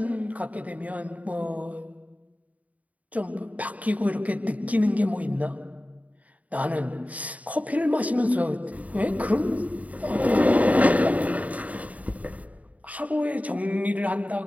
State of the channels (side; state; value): left; late; 0.070 ms